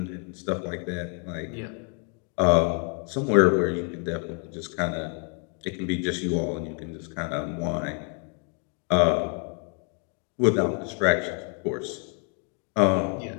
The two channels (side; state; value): right; quieter; 37.3 dB